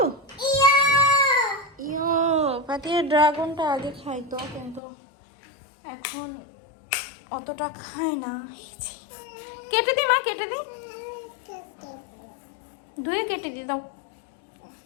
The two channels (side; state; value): right; drops out; at 4.8 s